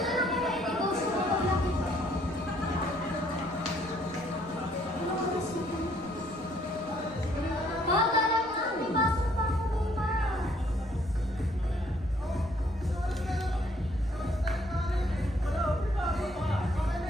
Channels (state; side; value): noise; left; rumble, 21 dB below the sound